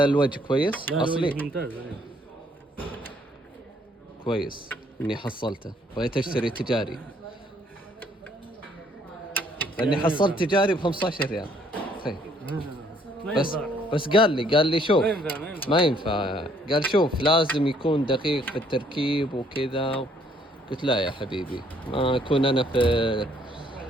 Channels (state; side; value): normal; both; correlation 0.65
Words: كويس اصلي ممتاز. كويس اني حصلته. بغيت اشتري تجاري لاني حصلت تجاري ب15 ريال. بس قال لي شوف ما ينفع. قال شوف لازم يكون دقيق في التركيب وكذا. قلت لا يا حبيبي، ما اكون انا في